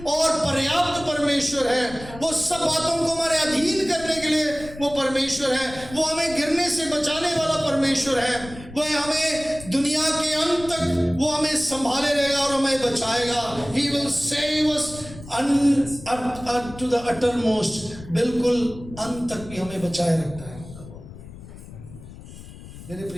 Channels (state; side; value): noise; left; rumble, 16 dB below the sound